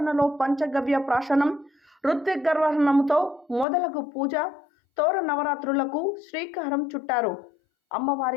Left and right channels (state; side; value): drops out; right; at 3.7 s